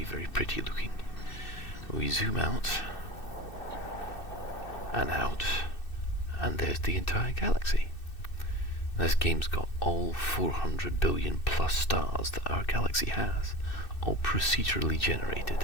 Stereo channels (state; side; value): late; right; 2.6 ms